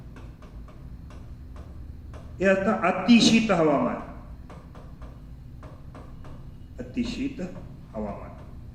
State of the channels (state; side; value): identical; both; correlation 1.00